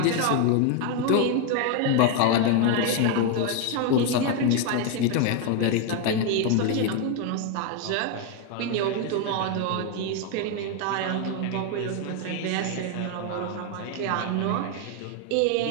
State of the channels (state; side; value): different; both; correlation 0.01